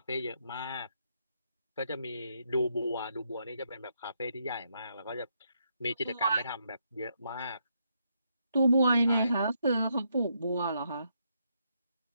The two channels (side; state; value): both; inverted; correlation -0.77